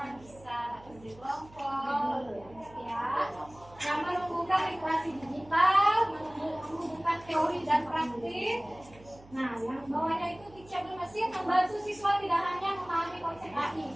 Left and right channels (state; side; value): noise; right; hum, 23 dB below the sound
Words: Bisa kerja kelompok ya, yang menumbuhkan literasi digital, menumbuhkan teori dan praktik. Nah, yang bawahnya itu teachable mesin membantu siswa tidak hanya memahami konsep AI